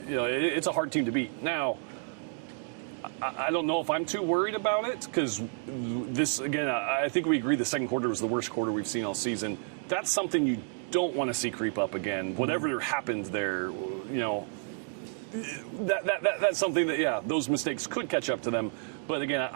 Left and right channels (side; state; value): left; silent; 58 dB below the other